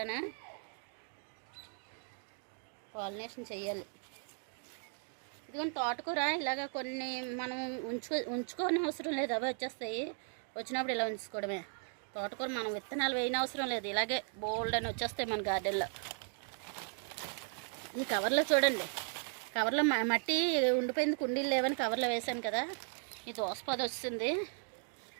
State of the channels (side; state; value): left; silent; 53 dB below the other